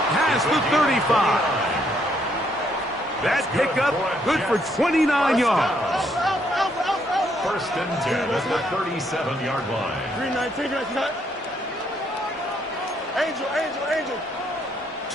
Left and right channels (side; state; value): both; normal; correlation 0.72